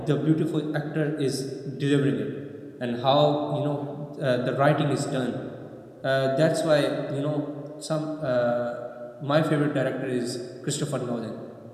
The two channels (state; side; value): identical; both; correlation 1.00